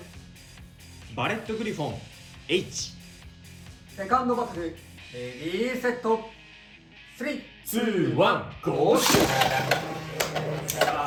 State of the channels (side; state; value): both; identical; correlation 1.00